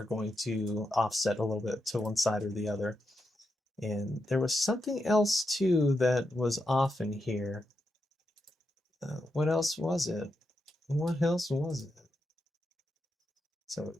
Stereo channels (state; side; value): normal; both; correlation 0.85